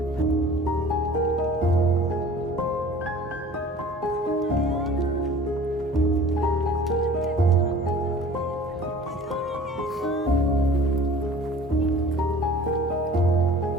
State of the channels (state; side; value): normal; both; correlation 0.46